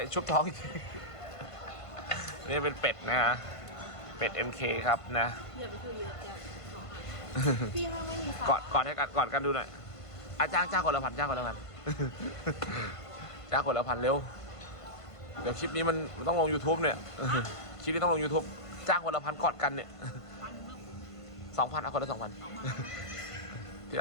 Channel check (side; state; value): right; late; 1.5 ms